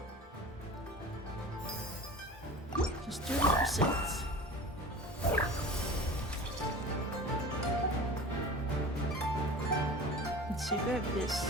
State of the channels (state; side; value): normal; both; correlation 0.36